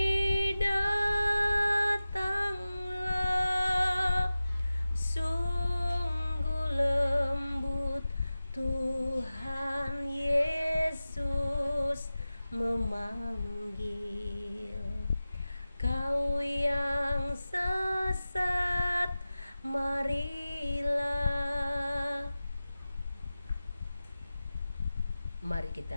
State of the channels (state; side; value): inverted; both; correlation -0.95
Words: datanglah. Sungguh lembut Tuhan Yesus memanggil. Kau yang sesat, marilah Mari